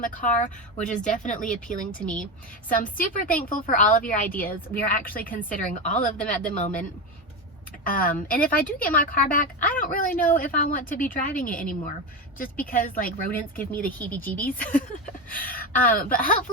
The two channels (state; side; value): normal; both; correlation 0.17